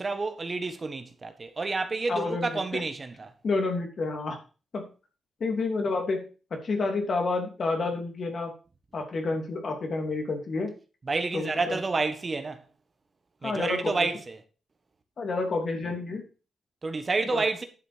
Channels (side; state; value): both; normal; correlation 0.84